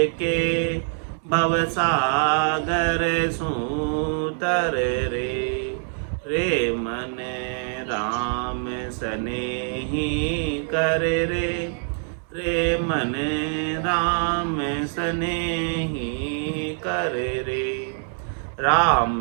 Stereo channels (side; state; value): left; silent; digital silence